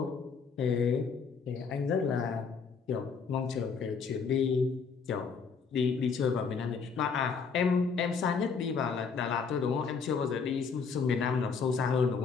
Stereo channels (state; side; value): quieter; right; 5.5 dB